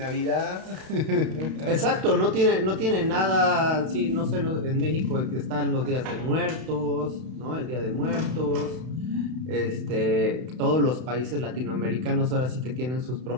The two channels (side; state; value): left; late; 32 ms